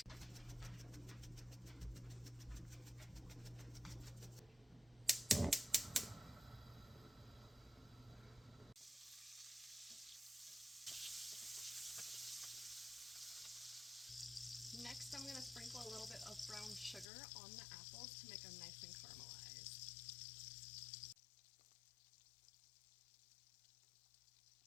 Next, I'm going to sprinkle a little bit of brown sugar on the apples to make them nice and caramelized.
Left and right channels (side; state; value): right; drops out; at 17.1 s